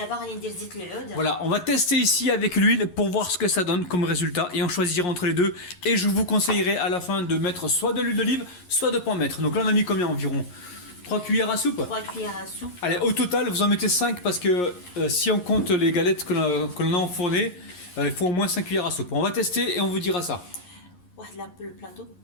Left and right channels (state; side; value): late; right; 11 ms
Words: غادي ندير زيت العود. Voilà, on va tester ici avec l'huile pour voir ce que ça donne comme résultat et on choisira entre les deux et je vous conseillerais à la fin de mettre soit de l'huile d'olive soit de pas en mettre. Donc là on a mis combien environ 3 cuillères à soupe. 3 cuillères à soupe. Allez, au total vous en mettez 5 parce que si on compte les galettes que l'on a enfournées, il faut au moins 5 cuillères à soupe. On va tester et on vous dira ça. واحد البلاطو